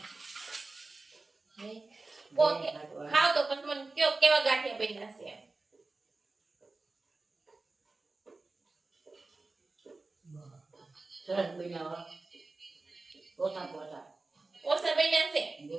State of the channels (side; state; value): left; quieter; 3.5 dB